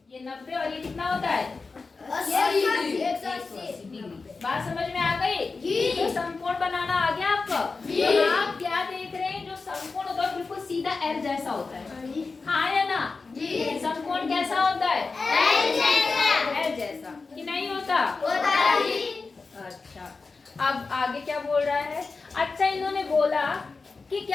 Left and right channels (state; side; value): quieter; right; 4.2 dB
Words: ये 90 और ये कितना होता है? 180 डिग्री। बात समझ में आ गई? तो समकोण बनाना आ गया आपको? तो आप क्या देख रहे हैं? जो समकोण होता है बिल्कुल सीधा एल जैसा होता है, हाँ या ना? समकोण कैसा होता है? एल जैसा कि नहीं होता? अच्छा अब आगे क्या बोल रहा है? अच्छा इन्होंने बोला कि